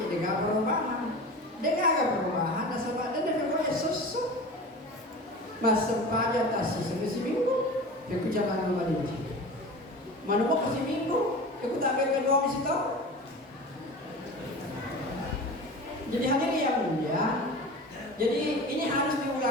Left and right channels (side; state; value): both; normal; correlation 0.34